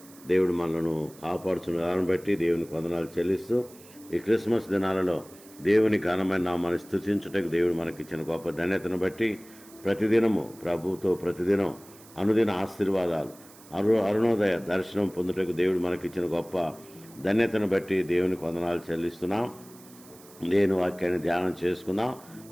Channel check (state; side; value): noise; right; hiss, 23 dB below the sound